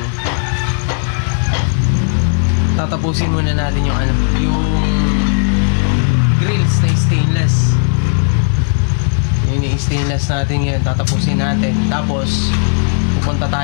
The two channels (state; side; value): silent; right; digital silence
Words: Tatapusin muna natin yung yung grills na stainless. Yun yung stainless natin ngayon, tatapusin natin. Tapos pupunta